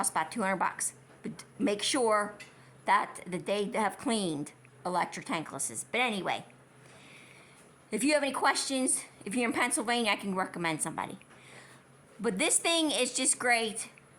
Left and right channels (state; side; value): identical; both; correlation 1.00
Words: about $200. But make sure that they have cleaned electric tanklesses. But anyway, if you have any questions, if you're in Pennsylvania, I can recommend somebody. But this thing is just great.